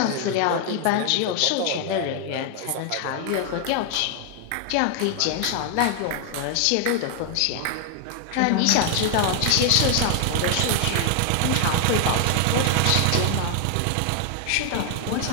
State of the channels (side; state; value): both; different; correlation 0.00